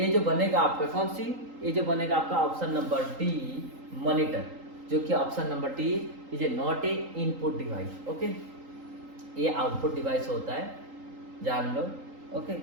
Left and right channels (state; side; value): late; left; 3.8 ms